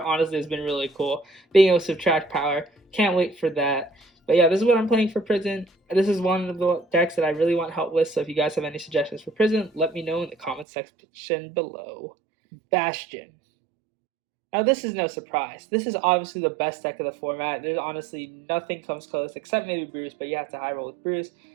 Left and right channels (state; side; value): drops out; left; at 10.7 s